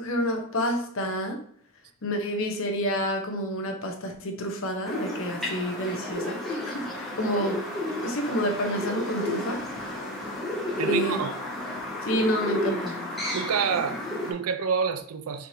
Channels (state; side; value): normal; both; correlation 0.14